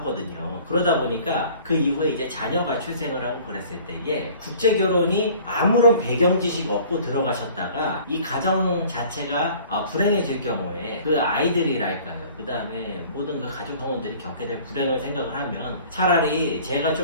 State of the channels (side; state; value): both; inverted; correlation -0.49